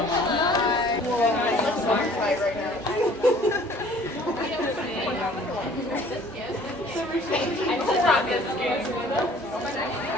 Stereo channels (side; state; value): both; normal; correlation 0.53